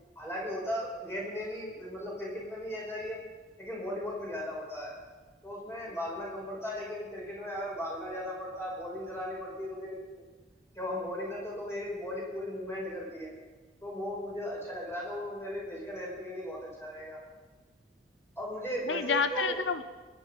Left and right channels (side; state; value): both; normal; correlation 0.38